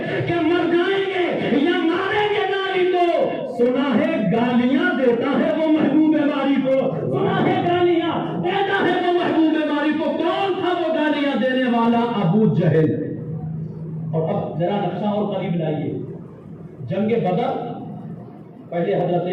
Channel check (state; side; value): identical; both; correlation 1.00